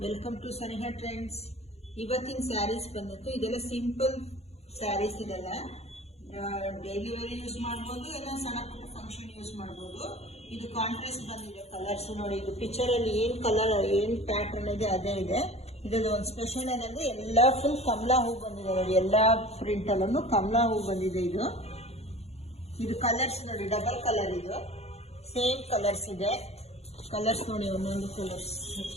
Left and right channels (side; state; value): right; late; 0.31 ms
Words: welcome to Saniha trends. ಇವತ್ತಿನ ಸ್ಯಾರೀಸ್ ಬಂದಿತ್ತು. ಇದೆಲ್ಲ ಸಿಂಪಲ್ ಸ್ಯಾರೀಸ್. ಇದೆಲ್ಲ ಡೈಲಿ ವೇರ್ ಯೂಸ್ ಮಾಡ್ಬೋದು, ಎಲ್ಲ ಸಣ್ಣ ಪುಟ್ಟ ಫಂಕ್ಷನ್ ಯೂಸ್ ಮಾಡ್ಬೋದು. ಇದು ಕಾಂಟ್ರಾಸ್ಟ್ ಬಂದಿದೆ ಕಲರ್ಸ್ ನೋಡಿ. ಇದು ಪಿಕ್ಚರ್ ಅಲ್ಲಿ ಏನ್ ಕಲರ್ ಏನ್ ಪ್ಯಾಟರ್ನ್ ಇದೆ ಅದೇ ಇದೆ. ಇದ್ರಲ್ಲಿ ಒಂದು ಸ್ಪೆಷಲ್ ಏನಂದ್ರೆ ಎಲ್ಲ ಫುಲ್ ಕಮಲಾ ಹೂ ಬಂದಿದೆ ನೋಡಿ. ಎಲ್ಲಾ ಪ್ರಿಂಟ್ ಅಲ್ಲೂ ಕಮಲಾ ಹೂ ಬಂದಿದೆ. ಇದು ಕಲರ್ಸ್ ನೋಡಿ, ಡಬಲ್ ಕಲರ್. ಇದು ಸೇಮ್ ಕಲರ್ಸ್ ಇದೆ. ಕಲರ್ಸ್ ನೋಡಿ, ಒಂದೊಂದು ಕಲರ್ಸ್